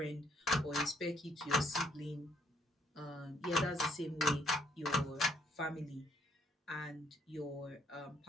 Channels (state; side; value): normal; both; correlation 0.69